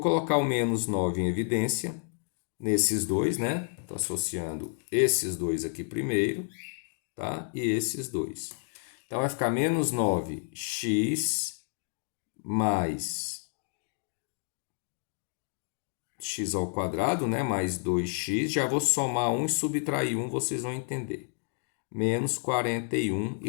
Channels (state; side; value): silent; right; 58 dB below the other